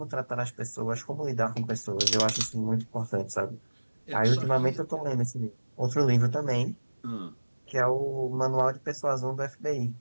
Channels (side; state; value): both; inverted; correlation -1.00